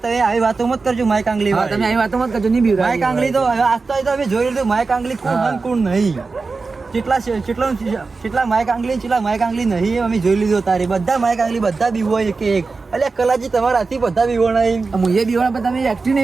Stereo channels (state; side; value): quieter; left; 4.2 dB